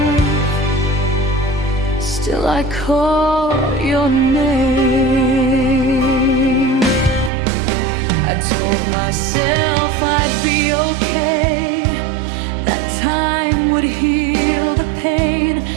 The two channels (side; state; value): left; drops out; at 7.3 s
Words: Still I call your name. I told myself I'd be okay, that time would heal the pain,